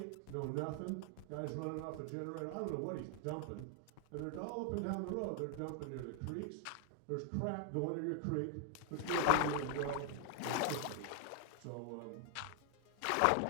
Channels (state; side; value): different; both; correlation 0.00